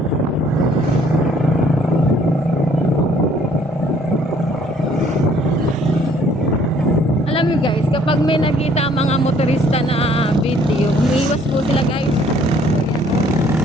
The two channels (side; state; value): both; normal; correlation 0.60